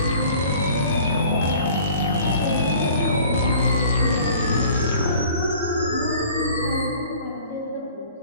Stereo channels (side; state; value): both; inverted; correlation -0.49